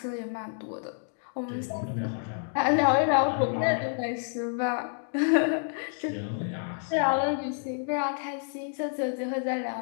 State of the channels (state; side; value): silent; right; 59 dB below the other